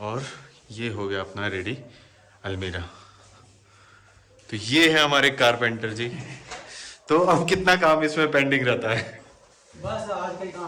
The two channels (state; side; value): identical; both; correlation 1.00